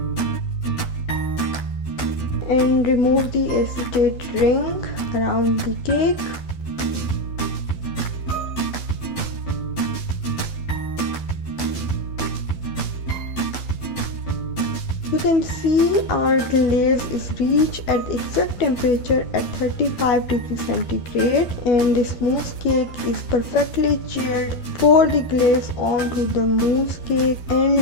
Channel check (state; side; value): late; right; 12 ms